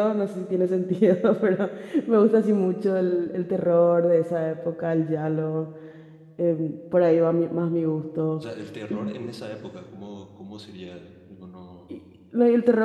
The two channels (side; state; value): both; identical; correlation 1.00